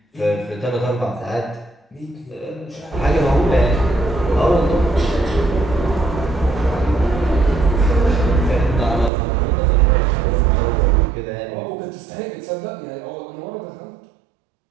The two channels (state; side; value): drops out; left; at 9.1 s